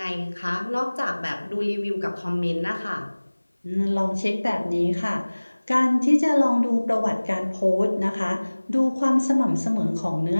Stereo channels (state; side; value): inverted; both; correlation -1.00